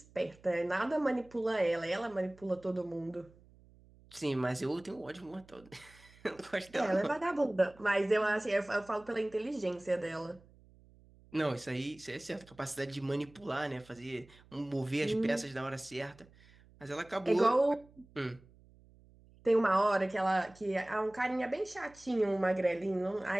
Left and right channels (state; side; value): noise; right; hum, 26 dB below the sound